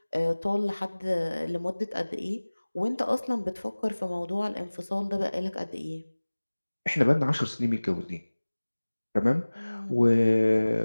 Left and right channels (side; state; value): both; inverted; correlation -1.00